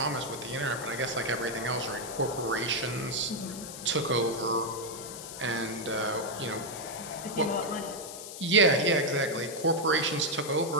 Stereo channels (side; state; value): left; noise; hiss, 11 dB below the sound